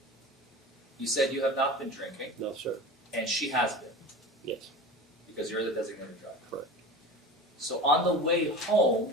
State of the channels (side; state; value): both; normal; correlation 0.32